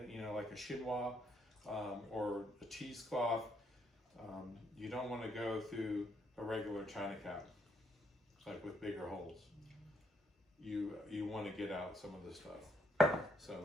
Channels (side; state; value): both; normal; correlation 0.73